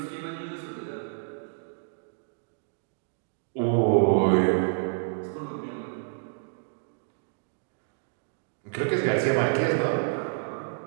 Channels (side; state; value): left; silent; digital silence